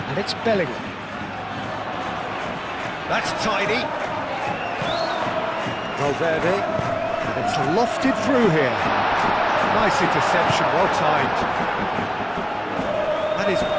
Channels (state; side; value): identical; both; correlation 1.00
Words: And it's Bellingham. That's tidy. Valverde. And it's lofted through here. Nice interception, well timed. That is